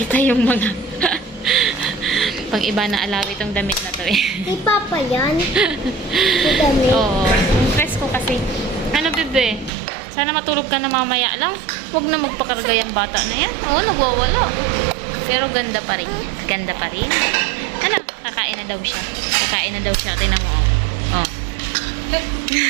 yung mga pang iba na alawis itong damit na to eh. Kay Papa yan? May damit? Oo. Press ko kasi. bebe. Sana matulog ka na mamaya lang. Huwag na magpakarga yung bata na yan. Oo, nagwawala. Pero ganda pa rin. Ganda pa rin. Ano? Kakain na daw siya. Kakain na daw siya. Tingnan mo. Oh.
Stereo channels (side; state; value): left; drops out; at 9.7 s